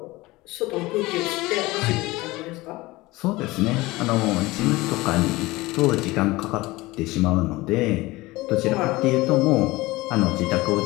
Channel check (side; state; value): right; quieter; 20.4 dB